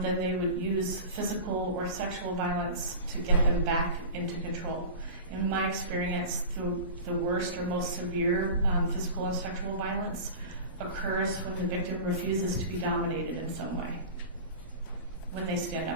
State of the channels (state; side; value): inverted; both; correlation -0.32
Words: then they would use physical or sexual violence to get them back into control. In my experience, the worst or most severe physical and sexual violence occurs when the victim refuses to be dominated in some way, when they stand